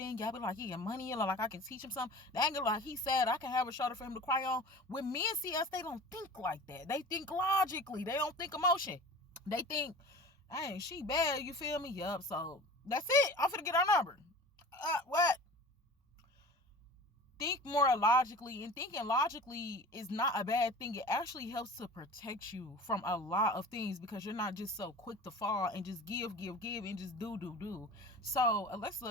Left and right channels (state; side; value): normal; both; correlation 0.39